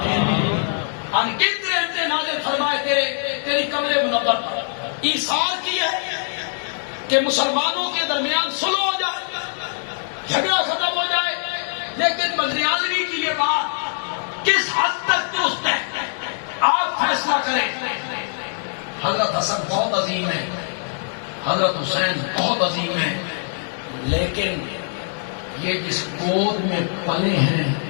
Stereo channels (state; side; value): silent; right; digital silence